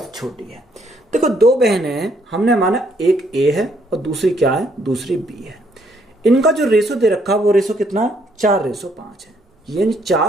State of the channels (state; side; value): normal; both; correlation 0.69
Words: छोटी है। देखो, दो बहनें हैं, हमने माना एक ए है और दूसरी क्या है, दूसरी बी है। इनका जो रेशो दे रखा वो रेशो कितना है, 4:5 है, यानी